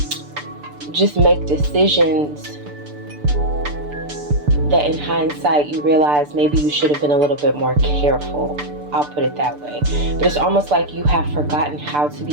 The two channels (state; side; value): late; left; 6.8 ms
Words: just make decisions that in hindsight you realize maybe you should have been a little bit more careful. I'll put it that way. But it's almost like you have forgotten how to be